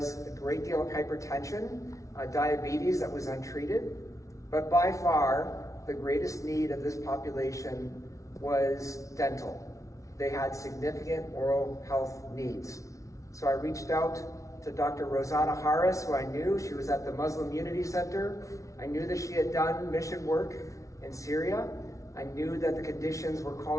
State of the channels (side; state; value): right; late; 0.15 ms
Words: a great deal of hypertension, diabetes that was untreated. But by far, the greatest need of this population was dental. They had significant oral health needs. So I reached out to Dr. Rosanna Harris, who I knew. She was at the Muslim Unity Center. I knew that she had done mission work in Syria. I knew that the conditions were